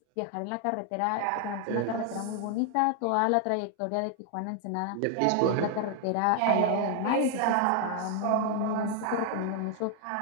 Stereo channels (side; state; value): both; different; correlation 0.00